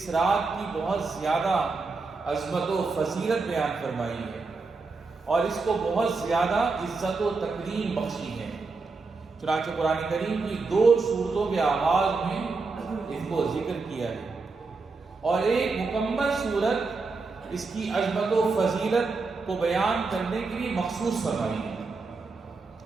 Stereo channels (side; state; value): left; quieter; 4.1 dB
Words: رات کی بہت زیادہ عظمت و فضیلت بیان فرمائی ہے اور اس کو بہت زیادہ عزت و تکریم بخشی ہے. چنانچہ قرآن کریم کی 2 سورتوں کے آغاز میں اس کو ذکر کیا ہے اور ایک مکمل سورت اس کی عظمت و فضیلت کو بیان کرنے کے لیے مخصوص فرمائی ہے.